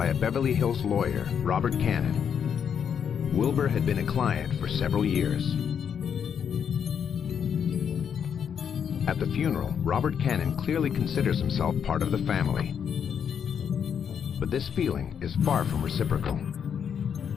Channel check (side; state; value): right; quieter; 7.7 dB